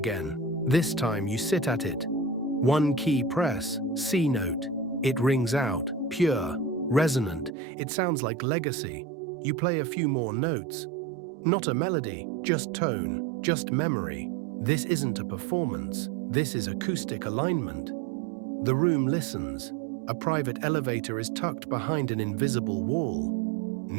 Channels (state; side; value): drops out; left; at 7.5 s